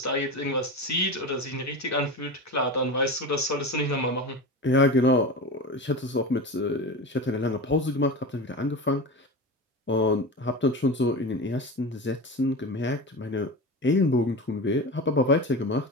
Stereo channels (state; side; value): normal; both; correlation 0.27